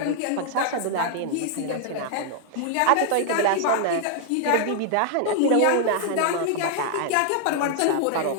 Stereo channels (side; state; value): both; different; correlation 0.00